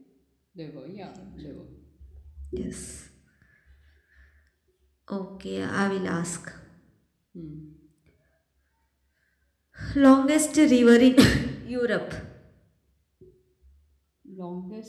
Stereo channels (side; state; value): both; identical; correlation 1.00